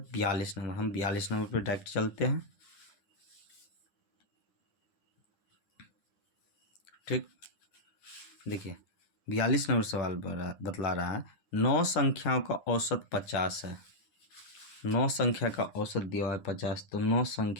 42 नंबर। हम 42 नंबर पे डायरेक्ट चलते हैं। ठीक, देखिए 42 नंबर सवाल बतला रहा है 9 संख्याओं का औसत 50 है। 9 संख्या का औसत दिया है 50, तो 9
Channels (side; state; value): right; late; 10 ms